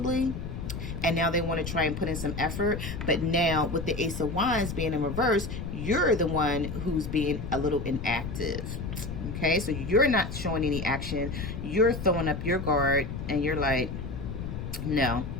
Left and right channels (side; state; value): left; noise; rumble, 6 dB below the sound